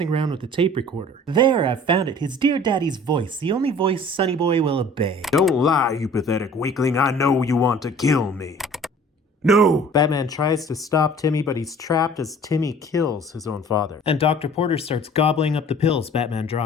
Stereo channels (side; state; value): both; normal; correlation 0.49